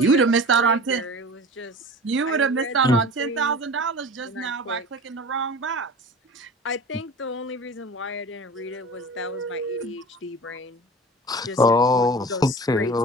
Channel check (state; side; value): normal; both; correlation 0.37